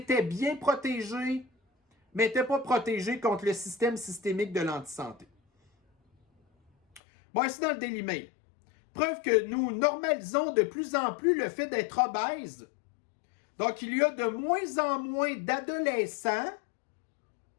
bien protégée, mais n'était pas protégée contre le système systémique de l'antisanté. Bon, ici dans le Daily Mail. Preuve que nous normalisons de plus en plus le fait d'être obèse. Donc, il y a de moins en moins d'adolescents,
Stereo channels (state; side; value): drops out; right; at 7.0 s